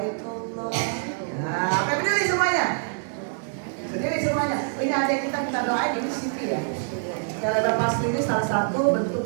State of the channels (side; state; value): left; silent; digital silence